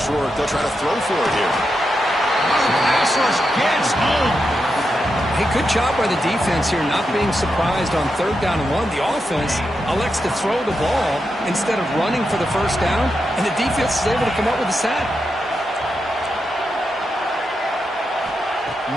short, they'll try to throw for it here. Pass rush gets home. Hey, good job by the defense here not being surprised on third down and 1. The offense elects to throw the ball instead of running for the first down, and the defense is able to come up with a sack.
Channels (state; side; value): normal; both; correlation 0.86